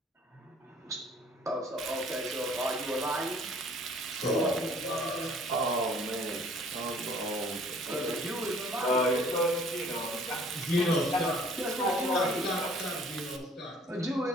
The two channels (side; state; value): both; normal; correlation 0.55